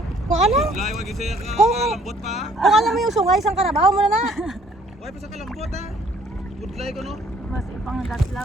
Kung alam. Lay, wag isaya ka. Kung- Kalambot pa. Kung alam mo yung sungay, isang karabaho mo na na. Why pa sa kalambot ha? Budlay ko no. Mas ipang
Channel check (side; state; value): both; normal; correlation 0.61